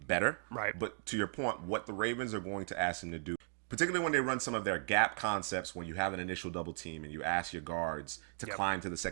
better. Right. But to your point, what the Ravens are going to ask him to do, particularly when they run some of their gap concepts, when you have an initial double team and you ask your guards to climb to the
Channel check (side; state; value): left; silent; digital silence